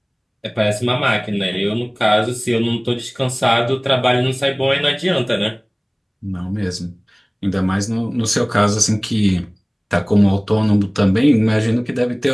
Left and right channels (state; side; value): identical; both; correlation 1.00